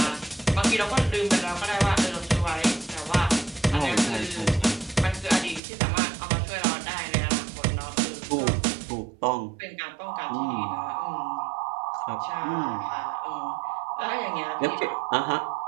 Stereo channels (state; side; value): drops out; left; at 5.6 s